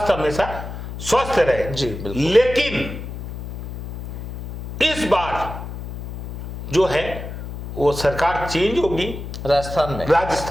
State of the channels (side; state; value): left; noise; hum, 9 dB below the sound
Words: हमेशा स्वस्थ रहे। जी, बिल्कुल। लेकिन इस बार जो है वो सरकार चेंज होगी